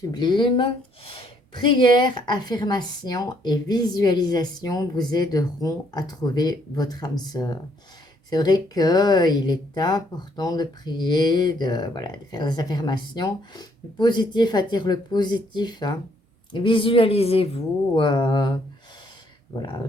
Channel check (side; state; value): both; normal; correlation 0.68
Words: Prière, affirmation et visualisation vous aideront à trouver votre âme sœur. C'est vrai qu'il est important de prier, voilà, de faire des affirmations. Le positif attire le positif. Hein. Visualisez-vous voilà,